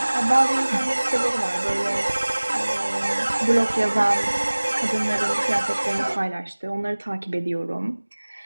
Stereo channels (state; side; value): inverted; both; correlation -1.00